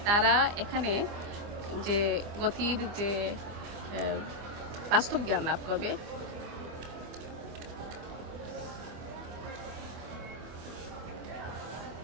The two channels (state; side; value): late; left; 24 ms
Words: তারা এখানে যে গতির যে বাস্তব জ্ঞান লাভ করবে।